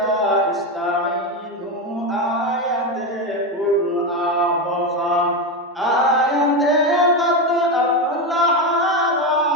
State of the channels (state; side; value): normal; both; correlation 0.13